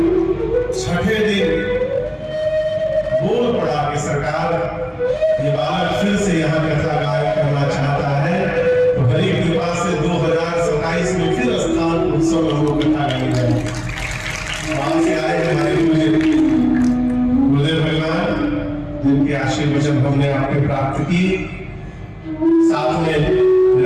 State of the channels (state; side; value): identical; both; correlation 1.00